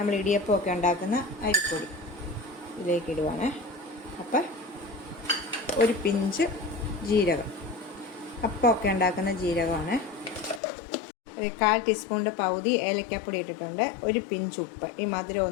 ഇടിയപ്പമൊക്കെ ഉണ്ടാക്കുന്ന അരിപ്പൊടി ഇതിലേക്ക് ഇടുവാണ്. അപ്പം ഒരു പിഞ്ച് ജീരകം, അപ്പമൊക്കെ ഉണ്ടാക്കുന്ന ജീരകമാണ്. ഒരു 1/4 ടീസ്പൂണിൻ്റെ പകുതി ഏലക്കാപ്പൊടി ഇട്ടിട്ടുണ്ട്. ഒരു പിഞ്ച് ഉപ്പ്, ഈ മധുരം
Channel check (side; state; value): right; drops out; at 10.6 s